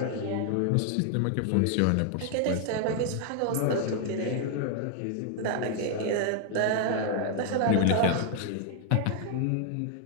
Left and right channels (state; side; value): different; both; correlation 0.00